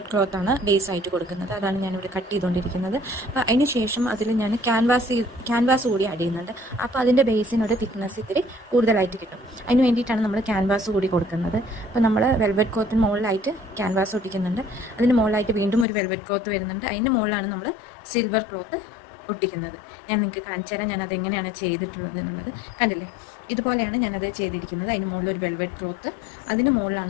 ക്ലോത്താണ് ബേസ് ആയിട്ട് കൊടുക്കുന്നത്. അതാണ് ഞാനിവിടെ കട്ട് ചെയ്തുകൊണ്ടിരിക്കുന്നത്. അപ്പോൾ അതിന് ശേഷം അതിൽ ഞാൻ ക്യാൻവാസ് കൂടി ആഡ് ചെയ്യുന്നുണ്ട്. അപ്പോൾ അതിൻ്റെ ബേസിനൊരു തിക്നെസ് ഇത്തിരി കൂടുതലായിട്ട് കിട്ടും. അതിന് വേണ്ടിയിട്ടാണ് നമ്മൾ ക്യാൻവാസ് കൂടി കൊടുക്കുന്നത്. അപ്പോൾ നമ്മൾ വെൽവെറ്റ് ക്ലോത്തിന് മുകളിലായിട്ട് ക്യാൻവാസ് ഒട്ടിക്കുന്നുണ്ട്. അതിന് മുകളിലായിട്ട് വീണ്ടും ഒരു വെൽവെറ്റ് ക്ലോത്ത് വരുന്നുണ്ട്. അതിൻ്റെ മുകളിലാണ് നമ്മൾ സിൽവർ ക്ലോത്ത് ഒട്ടിക്കുന്നത്. ഞാൻ നിങ്ങൾക്ക് കാണിച്ചു തരാം ഞാനത് എങ്ങനെയാണ് ചെയ്തിട്ടുള്ളത് എന്നുള്ളത്. കണ്ടില്ലേ, ഇതുപോലെയാണ് ഞാനത് ചെയ്തിരിക്കുന്നത്. അതിന് മുകളിൽ ഒരു വെൽവെറ്റ് ക്ലോത്ത്, അതിന്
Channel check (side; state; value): right; drops out; at 15.9 s